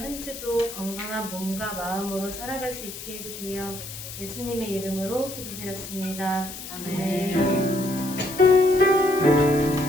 주도 건강한 몸과 마음으로 살아갈 수 있게 해주세요. 예수님의 이름으로 기도드렸습니다. 아멘.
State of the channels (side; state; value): left; noise; hiss, 11 dB below the sound